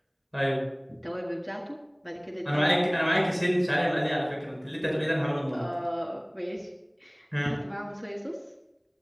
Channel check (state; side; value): identical; both; correlation 1.00